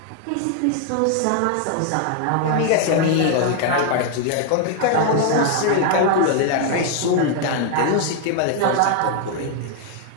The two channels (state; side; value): different; both; correlation 0.00